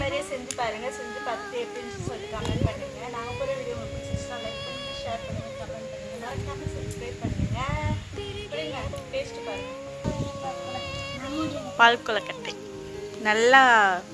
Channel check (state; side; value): identical; both; correlation 1.00